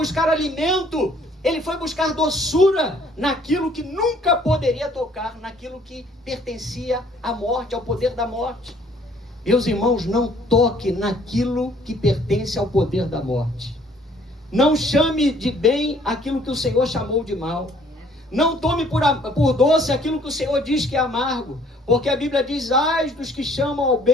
alimento, ele foi buscar doçura naquilo que nunca poderia tocar, naquilo que pertencia à morte, ao poder da morte. Meus irmãos, não toque naquilo que pertence ao poder da morte. Não chame de bem aquilo que o Senhor chamou de mal. Não tome por doce aquilo que o Senhor diz que é amargo, porque a Bíblia diz: ai dos que chamam ao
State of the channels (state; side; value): normal; both; correlation 0.60